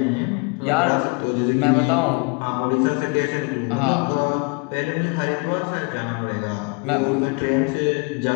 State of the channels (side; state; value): right; quieter; 31.8 dB